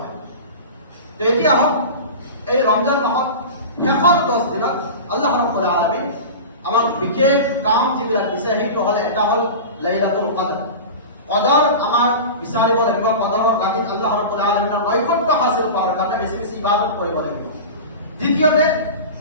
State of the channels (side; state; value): both; inverted; correlation -0.30